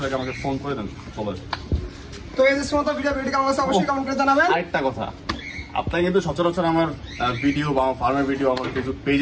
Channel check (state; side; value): identical; both; correlation 1.00